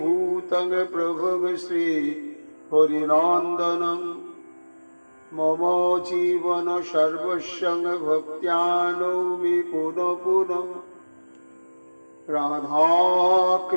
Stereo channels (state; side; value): inverted; both; correlation -1.00